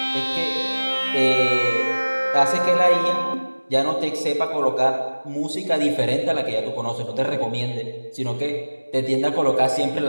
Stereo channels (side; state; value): both; inverted; correlation -1.00